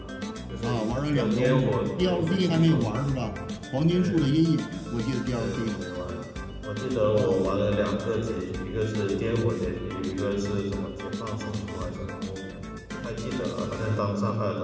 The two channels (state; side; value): identical; both; correlation 1.00